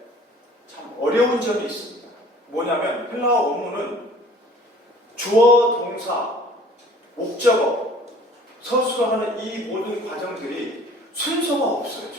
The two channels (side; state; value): both; normal; correlation 0.50